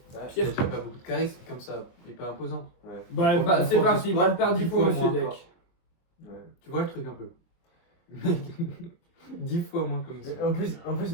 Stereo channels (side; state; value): right; late; 23 ms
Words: Il a Pierre. déjà pas beaucoup de charisme comme ça, et pas imposant. Bah, Prof- bah mon c'est prof de parti, sport, balle perdue 10 pour fois monsieur moins Deck. encore. Tu vois le truc un peu. Mec, 10 fois moins comme ça. En